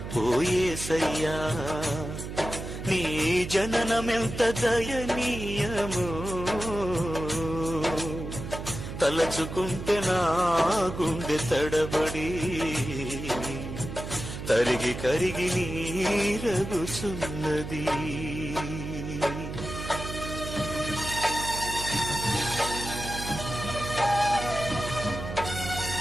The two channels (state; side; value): noise; right; hum, 8 dB below the sound